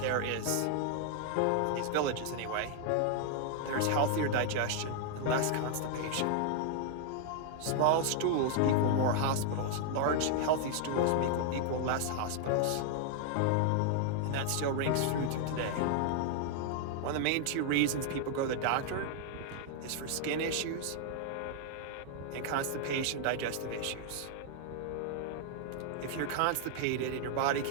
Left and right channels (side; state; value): both; different; correlation 0.00